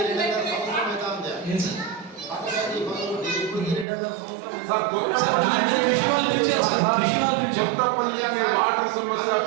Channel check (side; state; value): left; drops out; at 3.9 s